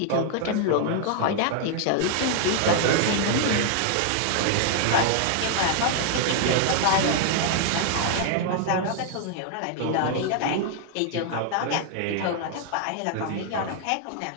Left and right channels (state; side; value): different; both; correlation 0.00